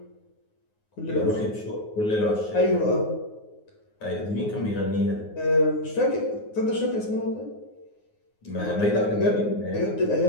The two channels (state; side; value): late; right; 9.5 ms